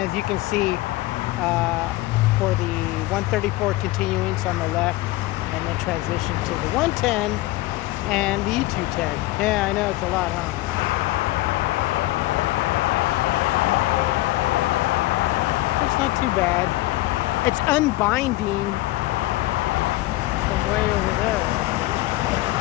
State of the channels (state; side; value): quieter; right; 18.4 dB